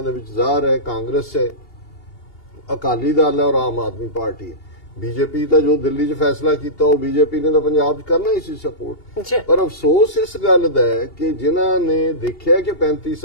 ਦੇ ਵਿੱਚ ਜ਼ਾਹਰ ਹੈ ਕਾਂਗਰਸ ਹੈ, ਅਕਾਲੀ ਦਲ ਹੈ ਔਰ ਆਮ ਆਦਮੀ ਪਾਰਟੀ ਹੈ। ਬੀਜੇਪੀ ਤਾਂ ਜੋ ਦਿੱਲੀ 'ਚ ਫੈਸਲਾ ਕੀਤਾ ਉਹ ਬੀਜੇਪੀ ਨੇ ਤਾਂ ਪੰਜਾਬ 'ਚ ਕਰਨਾ ਹੀ ਸੀ ਸਪੋਰਟ। ਪਰ ਅਫਸੋਸ ਇਸ ਗੱਲ ਦਾ ਹੈ ਕਿ ਜਿਨ੍ਹਾਂ ਨੇ ਦੇਖਿਆ ਕਿ 35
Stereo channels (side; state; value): right; late; 2.8 ms